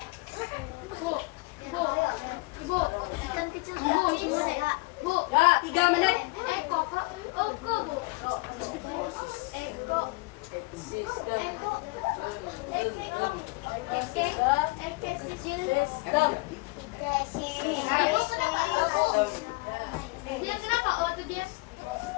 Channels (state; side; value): quieter; right; 26.2 dB